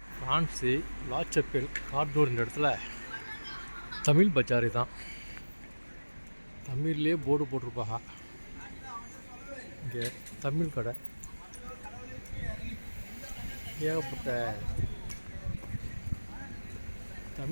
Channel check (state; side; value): inverted; both; correlation -1.00